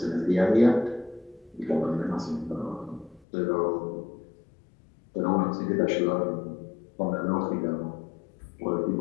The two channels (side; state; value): right; drops out; at 3.2 s